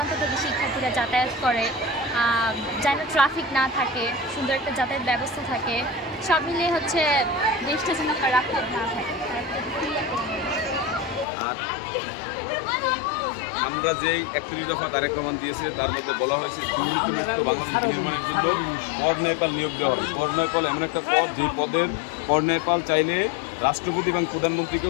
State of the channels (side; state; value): right; drops out; at 11.2 s